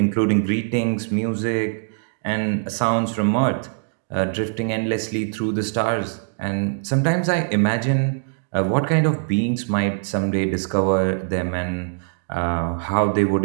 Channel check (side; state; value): left; silent; digital silence